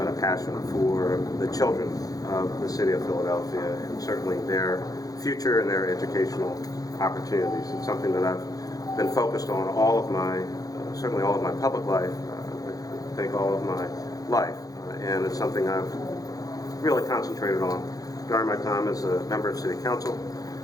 and a passion for the children of the city of Philadelphia, and certainly their future and their educational opportunities. It's something that I've been focused on all of my, certainly all of my public life, I think all of my life, and it's something I've really concentrated on during my time as a member of City Council.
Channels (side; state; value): right; late; 0.18 ms